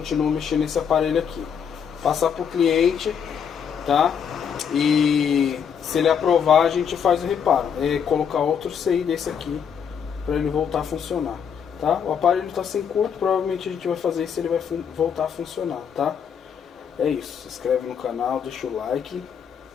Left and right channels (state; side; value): quieter; right; 7.5 dB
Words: mexendo nesse aparelho aqui. Passar pro cliente, tá? E se ele aprovar, a gente faz o reparo. É colocar outro CI desse aqui para ele voltar a funcionar, tá? O aparelho está sem curto, provavelmente a gente vai fazer isso, ele vai voltar a funcionar, tá? É isso. Se inscreve no canal, deixa o like